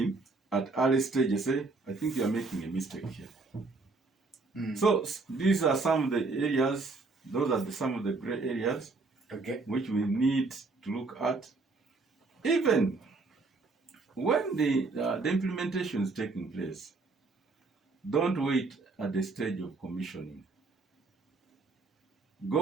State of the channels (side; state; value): left; quieter; 3.8 dB